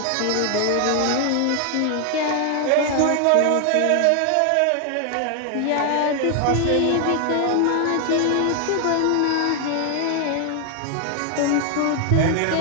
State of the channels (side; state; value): both; different; correlation 0.00